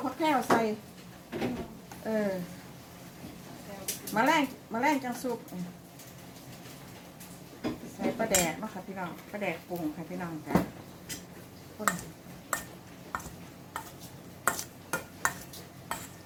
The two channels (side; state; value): both; identical; correlation 1.00